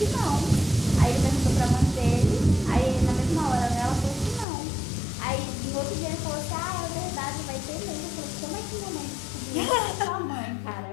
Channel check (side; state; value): right; drops out; at 4.5 s